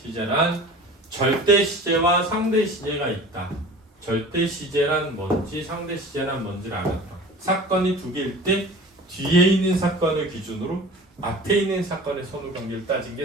절대 시제와 상대 시제가 있다. 절대 시제란 뭔지 상대 시제란 뭔지를 알았다. 사건이 2개일 때 뒤에 있는 사건을 기준으로 앞에 있는 사건의 선후 관계를 따진 게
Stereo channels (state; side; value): normal; both; correlation 0.40